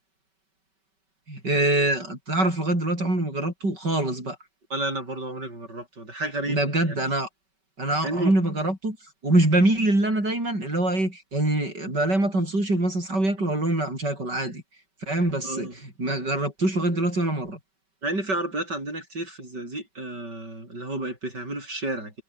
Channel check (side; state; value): left; late; 5.2 ms